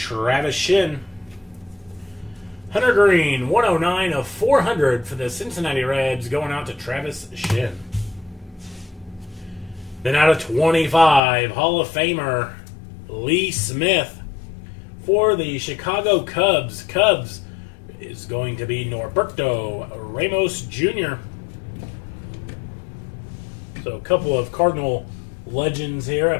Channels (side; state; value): right; drops out; at 11.2 s